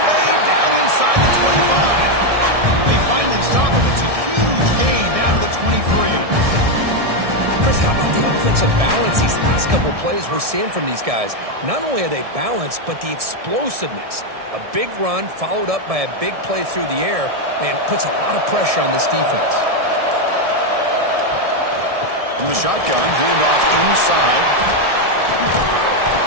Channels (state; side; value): late; left; 1.7 ms